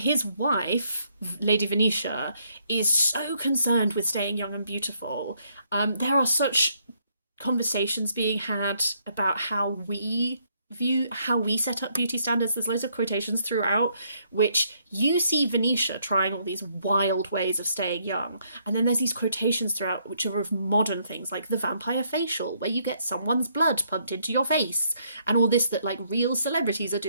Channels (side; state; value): both; inverted; correlation -0.71